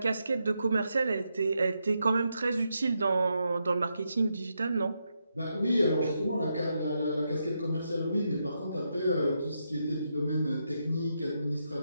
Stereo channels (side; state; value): both; inverted; correlation -0.83